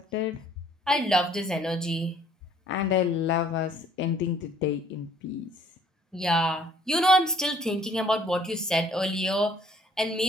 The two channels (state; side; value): normal; both; correlation 0.58